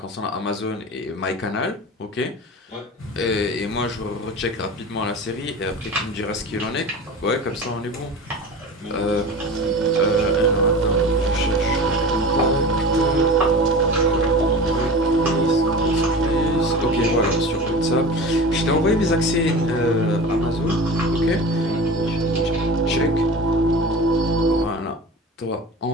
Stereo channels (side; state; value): both; normal; correlation 0.33